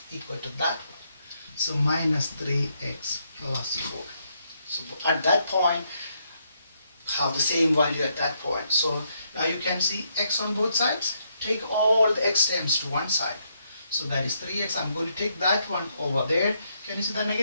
equal to that one. So minus 3x plus 4. So at that point, have the same value at that point. So now you can see x on both sides. Take all the x terms to one side. So that is 3x. I'm going to take that one over there. Can you see the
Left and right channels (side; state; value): both; inverted; correlation -0.76